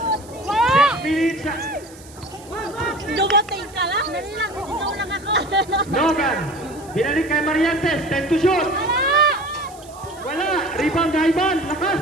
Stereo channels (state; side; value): noise; right; hiss, 22 dB below the sound